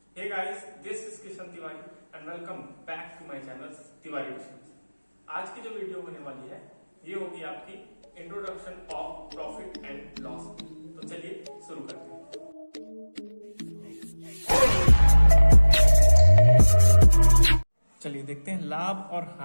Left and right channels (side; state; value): both; inverted; correlation -1.00